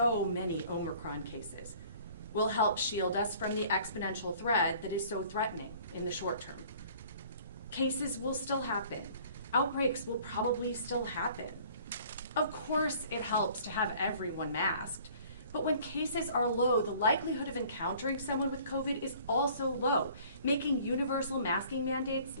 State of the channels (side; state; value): both; inverted; correlation -0.52